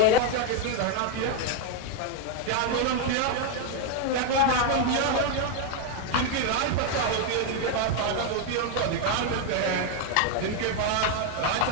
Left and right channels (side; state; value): both; different; correlation 0.01